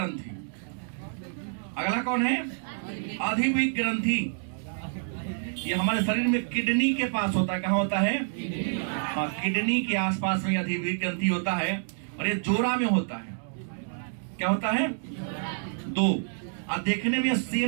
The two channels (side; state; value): left; silent; digital silence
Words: अगला कौन है? अधिवृक्क ग्रंथि। ये हमारे शरीर में किडनी के पास होता है। कहाँ होता है? हाँ, किडनी के आसपास में अधिवृक्क ग्रंथि होता है। और ये जोड़ा में होता है। क्या होता है? दो। और देखने में